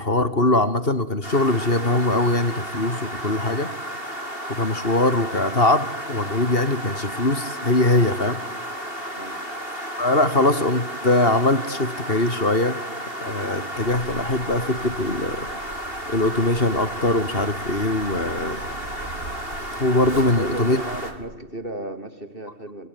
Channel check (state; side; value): late; right; 2.8 ms